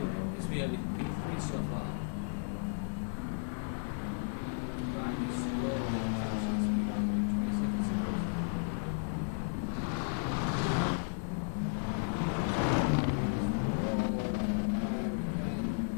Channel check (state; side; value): silent; right; digital silence